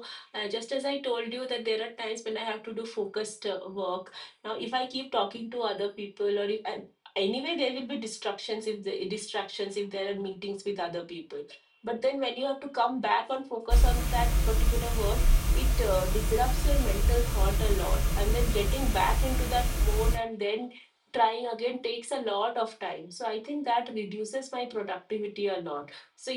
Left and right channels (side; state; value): both; identical; correlation 1.00